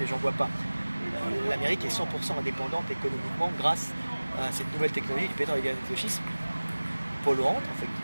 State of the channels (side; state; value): both; inverted; correlation -1.00